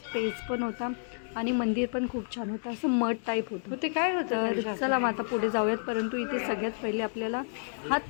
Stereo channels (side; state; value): right; silent; digital silence